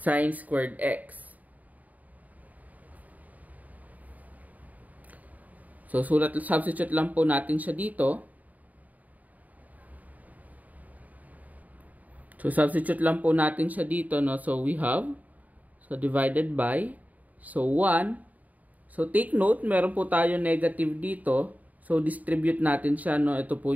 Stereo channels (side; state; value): left; late; 0.075 ms